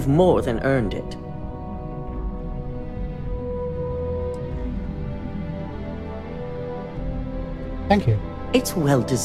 more than earned it. Thank you. It's well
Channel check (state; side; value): identical; both; correlation 1.00